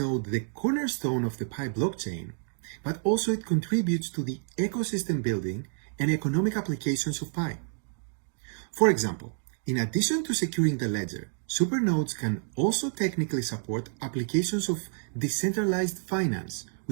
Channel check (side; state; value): left; silent; digital silence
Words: the cornerstone of the Pi blockchain, but also it contributes to the ecosystem building and economic applications of Pi. For example, in addition to securing the ledger, supernodes can also technically support applications of decentralized finance,